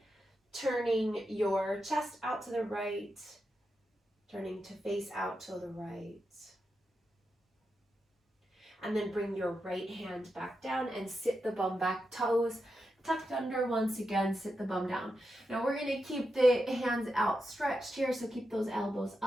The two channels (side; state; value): both; normal; correlation 0.87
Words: turning your chest out to the right, turning to face out to the right. And then bring your right hand back down and sit the bum back, toes tucked under once again, sit the bum down. Now we're going to keep the hands outstretched here, so keep those elbows